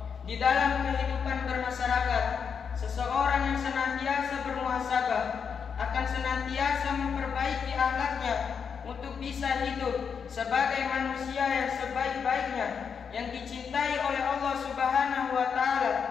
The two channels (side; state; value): right; quieter; 6.6 dB